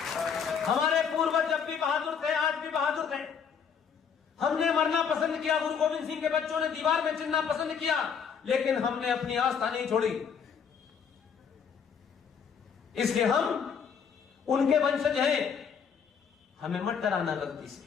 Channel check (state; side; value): quieter; right; 6.9 dB